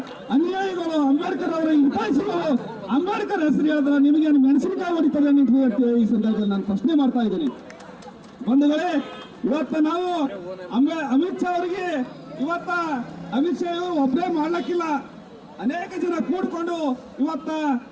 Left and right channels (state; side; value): identical; both; correlation 1.00